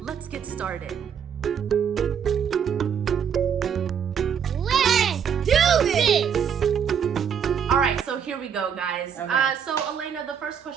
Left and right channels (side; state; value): left; quieter; 7.7 dB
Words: get started. Let's do this! All right, so here we go, guys. Okay. So Alaina, the first